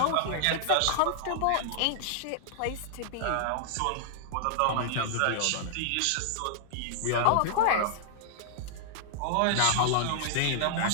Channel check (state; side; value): different; both; correlation -0.01